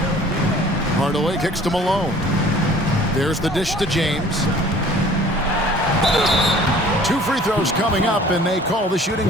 Hardaway kicks to Malone. There's the dish to James. 2 free throws coming up, and they call the shooting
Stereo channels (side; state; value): both; normal; correlation 0.50